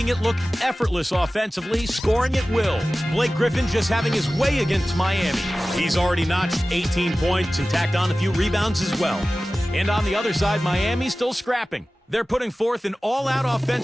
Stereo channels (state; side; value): normal; both; correlation 0.96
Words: it look effortless offensively, scoring at will. Blake Griffin just having his way against Miami. He's already notched 18 points and tacked on a few rebounds as well. And on the other side, Miami's still scrapping. They're putting forth an all-out